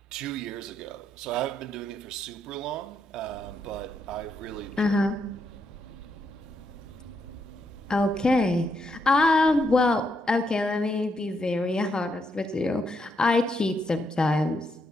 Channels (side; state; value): both; normal; correlation 0.79